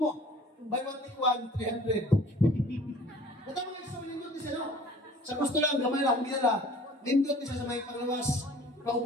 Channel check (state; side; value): normal; both; correlation 0.49